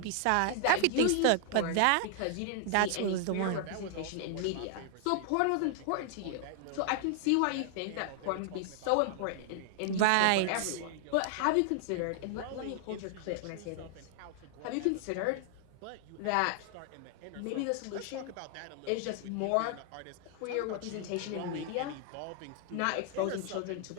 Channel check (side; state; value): both; different; correlation 0.00